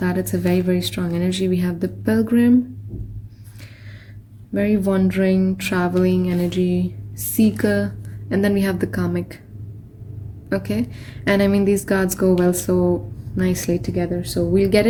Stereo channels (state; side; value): identical; both; correlation 1.00